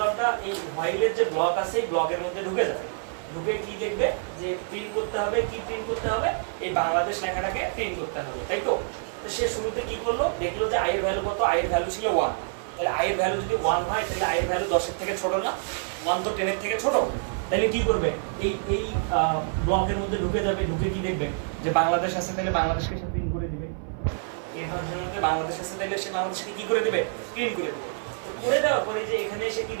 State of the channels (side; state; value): left; silent; 56 dB below the other